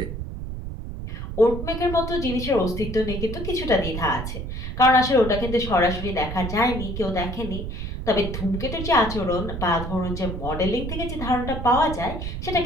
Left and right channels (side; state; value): right; noise; rumble, 6 dB below the sound